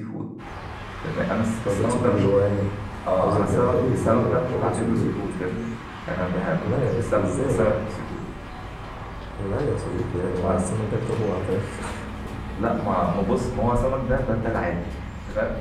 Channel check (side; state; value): both; identical; correlation 1.00